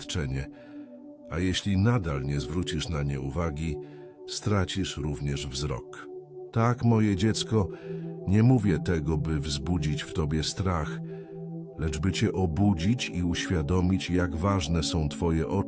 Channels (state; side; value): identical; both; correlation 1.00